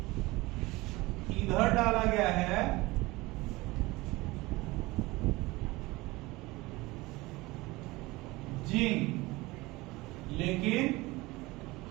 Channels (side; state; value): left; quieter; 21.3 dB